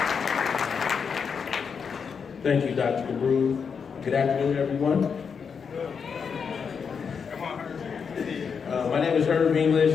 Thank you, Dr. DeBrew. Good afternoon, everyone. My name is Herb English.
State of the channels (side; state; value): right; quieter; 6.2 dB